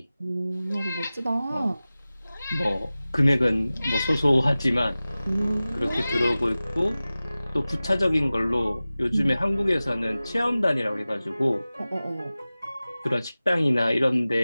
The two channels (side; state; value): both; inverted; correlation -0.97